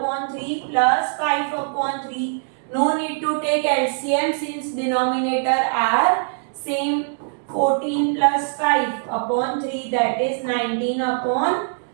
3 plus 5 upon 3. No need to take LCM since denominator are same. 14 plus 5 upon 3, that is 19 upon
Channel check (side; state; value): left; silent; digital silence